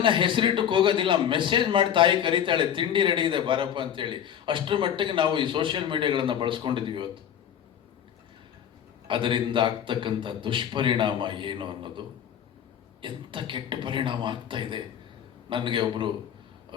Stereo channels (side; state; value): right; quieter; 9.3 dB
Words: ಹೆಸರಿಟ್ಟಕ್ಕೆ ಹೋಗೋದಿಲ್ಲ, ಮೆಸೇಜ್ ಮಾಡಿ ತಾಯಿ ಕರೀತಾಳೆ ತಿಂಡಿ ರೆಡಿ ಇದೆ ಬಾರಪ್ಪ ಅಂತೇಳಿ. ಅಷ್ಟರ ಮಟ್ಟಿಗೆ ನಾವು ಈ ಸೋಷಿಯಲ್ ಮೀಡಿಯಾಗಳನ್ನು ಬಳಸ್ಕೊಂಡಿದ್ದೀವಿ ಇವತ್ತು. ಅದರಿಂದ ಆಗ್ತಕ್ಕಂಥ ದುಷ್ಪರಿಣಾಮ ಏನು ಅನ್ನೋದು, ಎಂಥ ಕೆಟ್ಟ ಪರಿಣಾಮ ಆಗ್ತಾ ಇದೆ. ನನಗೆ ಒಬ್ಬರು